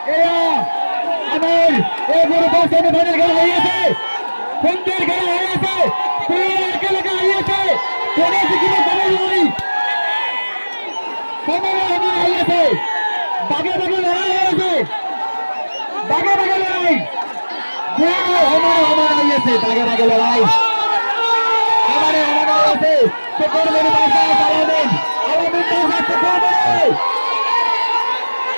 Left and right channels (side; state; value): both; inverted; correlation -1.00